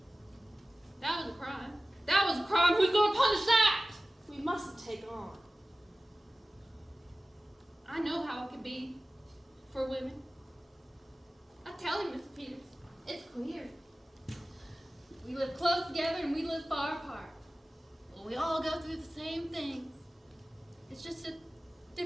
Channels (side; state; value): both; normal; correlation 0.96